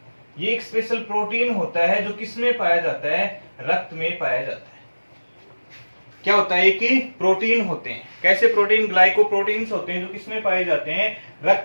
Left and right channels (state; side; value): inverted; both; correlation -1.00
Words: ये एक स्पेशल प्रोटीन होता है जो किसमें पाया जाता है, रक्त में पाया जाता है। क्या होता है कि प्रोटीन होते हैं, कैसे प्रोटीन, ग्लाइकोप्रोटीन्स होते हैं जो किसमें पाए जाते हैं,